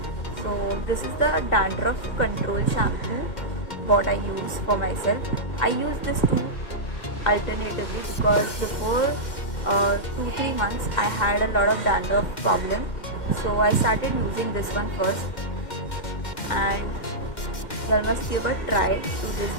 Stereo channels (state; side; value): late; right; 2.1 ms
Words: So this is the dandruff control shampoo what I use for myself. I use this too alternatively because before 2-3 months I had a lot of dandruff problem. So I started using this one first, and you must give a try to this